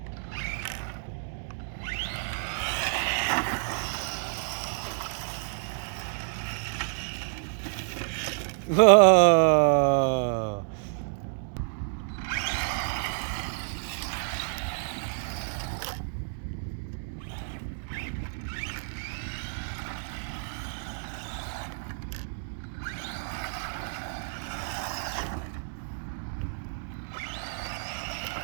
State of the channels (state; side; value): silent; left; digital silence